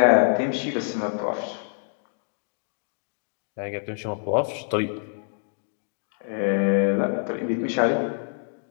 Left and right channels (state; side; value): silent; right; digital silence